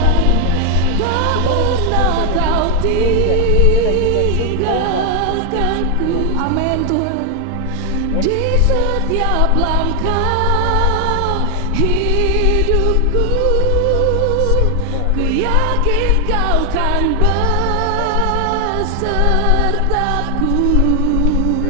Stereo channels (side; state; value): both; different; correlation 0.00